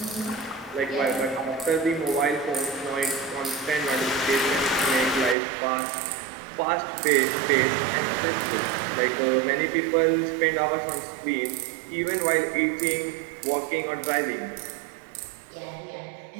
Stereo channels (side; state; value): left; drops out; at 5.4 s